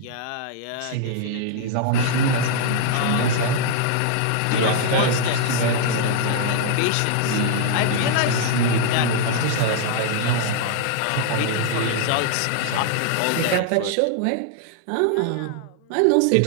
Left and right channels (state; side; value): different; both; correlation -0.01